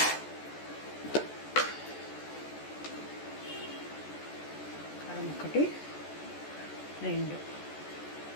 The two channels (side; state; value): right; late; 14 ms